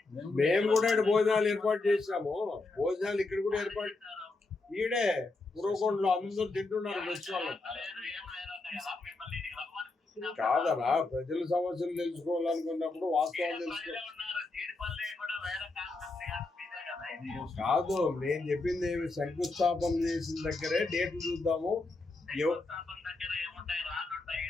మేము కూడా ఇక్కడ భోజనాలు ఏర్పాటు చేసాము. భోజనాలు ఇక్కడ కూడా ఏర్పాటు ఈడే ఉరవకొండలో అందరూ తింటున్నారు. ఫెస్టివల్ కాదరా, ప్రజల సమస్యలు తెలుసుకోవాలనుకున్నప్పుడు వాస్తవాలు తెలుసుకో. కాదు, నేను చెప్పింది ఏమి, శంకుస్థాపన చేసిన దగ్గరే డేట్లు చూద్దాము.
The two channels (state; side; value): quieter; right; 3.4 dB